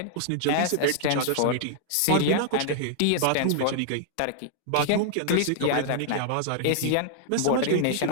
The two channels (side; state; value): both; different; correlation -0.01